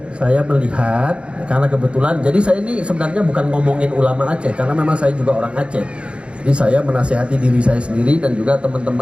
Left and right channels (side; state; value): left; late; 0.058 ms